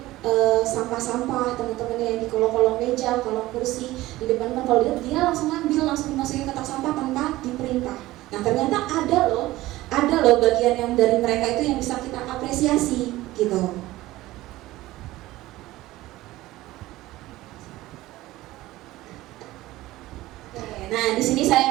sampah-sampah, teman-temannya yang di kolong-kolong meja, kolong kursi, di depan kalau dia langsung ngambil, langsung dimasukin ke kotak sampah tanpa diperintah. Nah ternyata ada loh bagian yang dari mereka itu yang bisa kita apresiasi gitu. Nah, di sini saya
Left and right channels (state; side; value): quieter; left; 17.3 dB